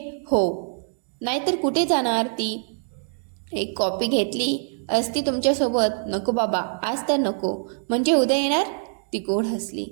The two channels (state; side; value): silent; left; 62 dB below the other